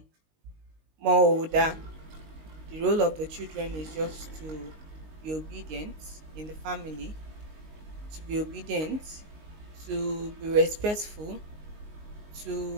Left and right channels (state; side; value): late; left; 19 ms